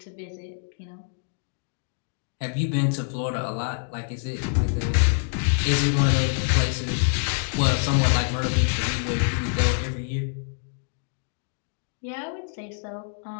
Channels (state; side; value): silent; right; digital silence